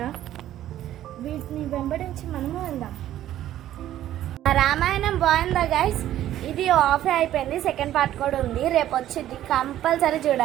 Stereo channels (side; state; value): left; quieter; 12.7 dB